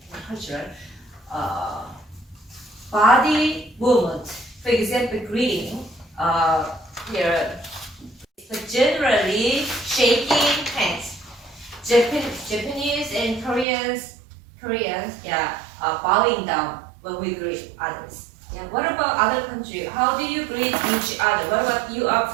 cultural. Body movement, for example, greeting. Here, but generally shaking hands. Japanese and Koreans, yeah, bowing down when we greet others. Yeah. What about other countries? How do you greet each other? What about you are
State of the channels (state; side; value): drops out; left; at 13.7 s